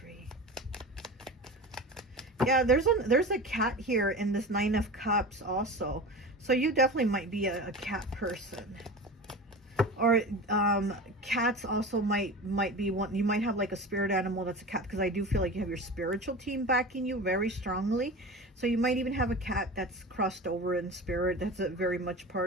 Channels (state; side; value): normal; both; correlation 0.31